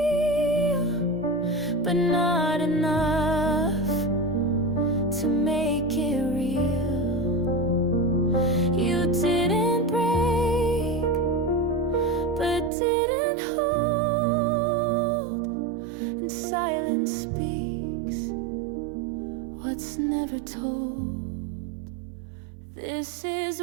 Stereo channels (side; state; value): left; drops out; at 12.7 s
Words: but not enough to make it real. You didn't break, but didn't hold, and silence speaks what's never told. This is